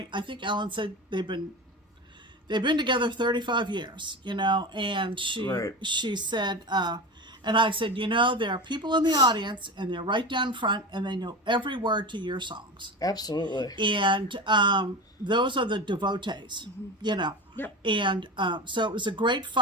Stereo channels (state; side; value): normal; both; correlation 0.26